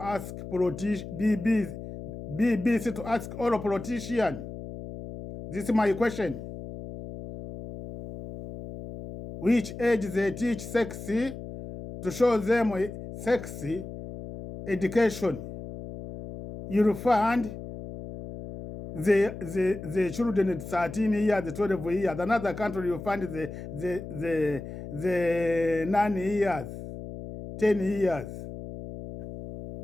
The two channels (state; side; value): noise; left; hum, 10 dB below the sound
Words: ask BBC to ask all politicians. This is my question. Which age they teach sexy to show them sexy education? You'll find the children at 13 years, 12 years. Another country you find the 9 years, 10 years.